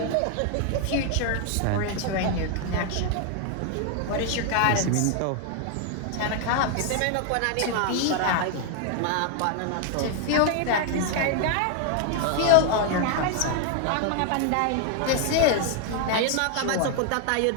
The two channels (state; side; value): different; both; correlation 0.00